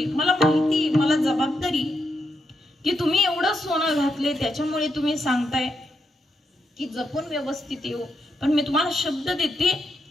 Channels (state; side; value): normal; both; correlation 0.82